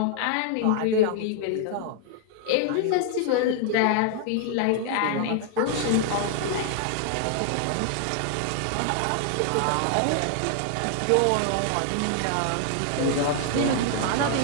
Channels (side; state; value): both; different; correlation 0.00